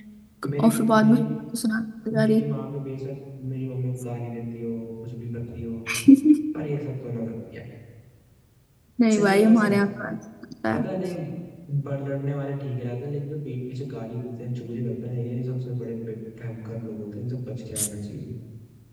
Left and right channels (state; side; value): identical; both; correlation 1.00